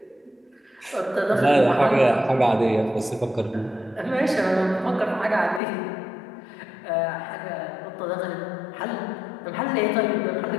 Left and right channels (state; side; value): drops out; right; at 5.6 s